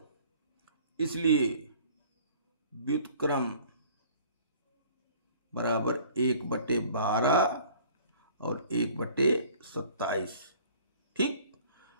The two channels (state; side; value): inverted; both; correlation -0.52